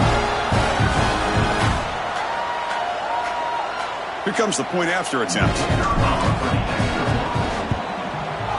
Here comes the point after attempt.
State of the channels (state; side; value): identical; both; correlation 1.00